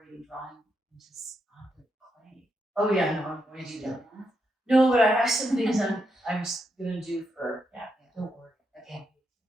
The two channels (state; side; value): normal; both; correlation 0.82